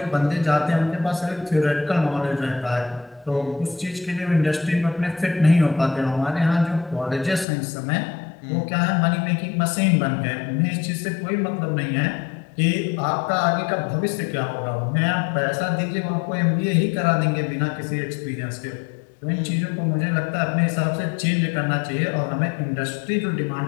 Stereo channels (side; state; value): right; drops out; at 7.5 s